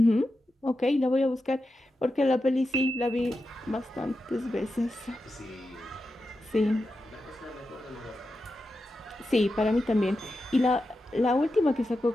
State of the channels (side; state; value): both; normal; correlation 0.90